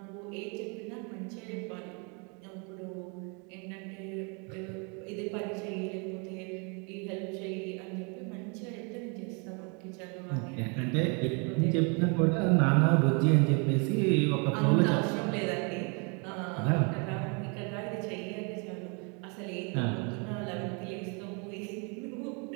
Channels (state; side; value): quieter; left; 34.1 dB